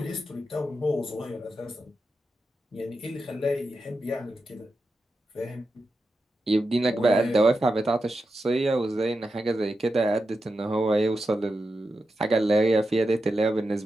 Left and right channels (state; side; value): normal; both; correlation 0.89